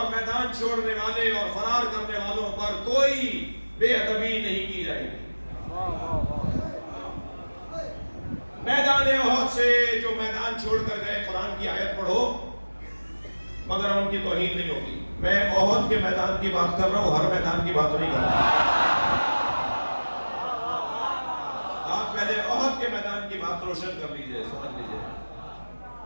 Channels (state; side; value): inverted; both; correlation -1.00